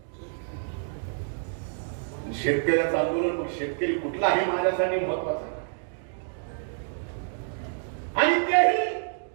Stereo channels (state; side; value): silent; left; digital silence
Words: शेतकऱ्याचं आंदोलन मग शेतकरी कुठला हे माझ्यासाठी महत्वाचं आहे. आणि तेही